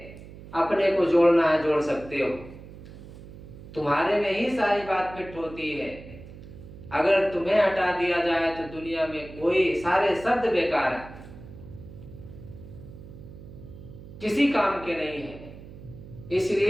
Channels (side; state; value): right; noise; hum, 16 dB below the sound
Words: अपने को जोड़ना है जोड़ सकते हो। तुम्हारे में ही सारी बात फिट होती है। अगर तुम्हें हटा दिया जाए तो दुनिया में कोई सारे शब्द बेकार है, किसी काम के नहीं है।